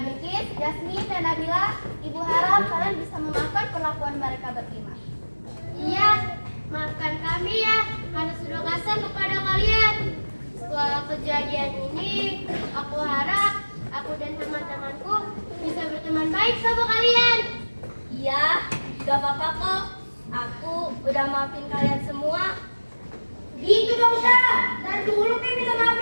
Jasmine, dan Nabila, Ibu harap kalian bisa memaafkan perlakuan mereka berlima. Iya, maafkan kami ya, karena sudah kasar kepada kalian. Setelah kejadian ini, aku harap aku dan teman-temanku bisa berteman baik sama kalian. Iya, gak apa-apa kok. Aku udah maafin kalian semua. Gitu dong, Syah. Dan dulu minta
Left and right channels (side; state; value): both; inverted; correlation -1.00